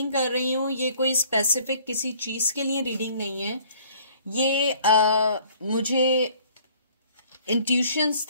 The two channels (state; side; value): inverted; both; correlation -0.57